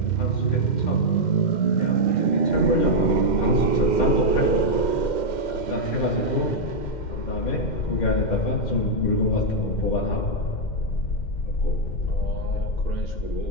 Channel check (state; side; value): late; right; 2.1 ms